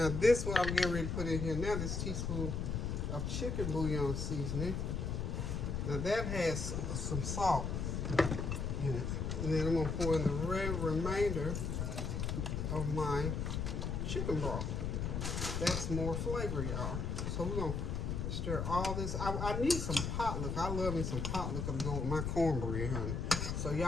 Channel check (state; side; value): noise; left; rumble, 1 dB below the sound